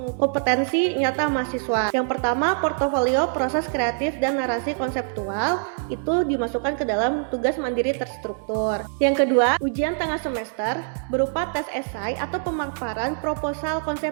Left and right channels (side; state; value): left; silent; digital silence